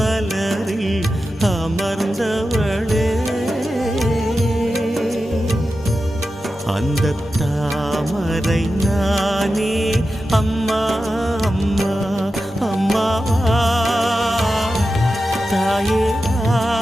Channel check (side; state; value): both; normal; correlation 0.92